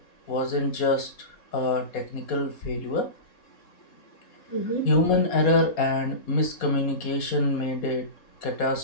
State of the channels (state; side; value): late; right; 4.2 ms